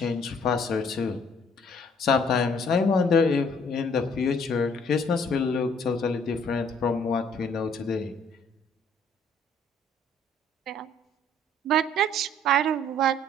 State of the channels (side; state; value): both; normal; correlation 0.60